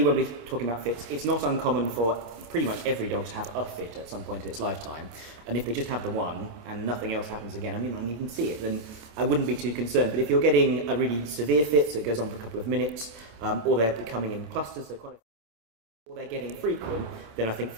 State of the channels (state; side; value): late; left; 28 ms